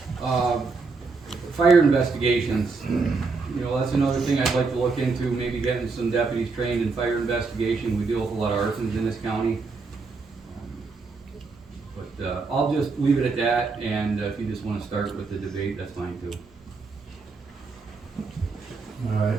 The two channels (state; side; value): quieter; left; 4.3 dB